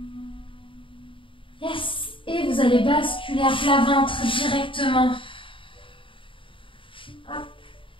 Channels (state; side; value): late; right; 0.25 ms